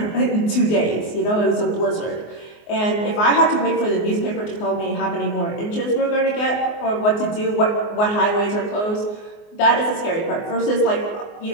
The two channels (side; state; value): right; late; 24 ms